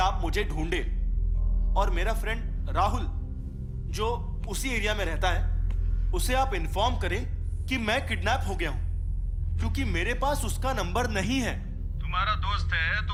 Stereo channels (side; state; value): both; identical; correlation 1.00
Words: मुझे ढूंढे और मेरा फ्रेंड राहुल जो उसी एरिया में रहता है उसे आप इन्फॉर्म करें कि मैं किडनैप हो गया हूं, क्योंकि मेरे पास उसका नंबर नहीं है। तुम्हारा दोस्त है तो